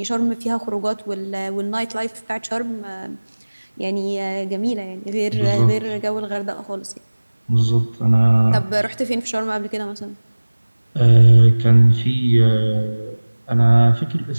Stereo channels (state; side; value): inverted; both; correlation -1.00